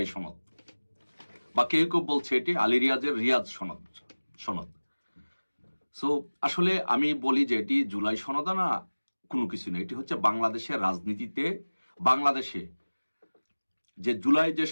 সনদ, বা কেউ কেউ বলছে এটি আলী রিয়াজের রিয়াজ সনদ। সো আসলে আমি বলি যে এটি জুলাই সনদ না, কোনো কিছু না। এটি হচ্ছে বাংলাদেশের রাজনীতিতে, বাংলাদেশে যে জুলাই যে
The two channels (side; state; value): both; inverted; correlation -1.00